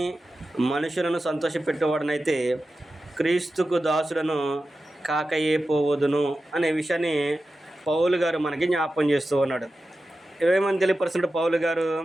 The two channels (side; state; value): both; normal; correlation 0.93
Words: మనుషులను సంతోషపెట్టేవాడనైతే క్రీస్తుకు దాసులను కాకయే పోవదును అనే విషయాన్ని పౌలు గారు మనకి జ్ఞాపకం చేస్తూ ఉన్నాడు. ఏమని తెలియపరుస్తున్నాడు పౌలు గారు?